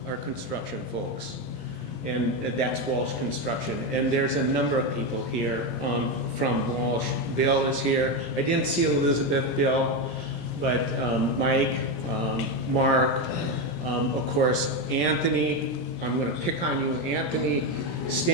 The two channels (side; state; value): right; late; 17 ms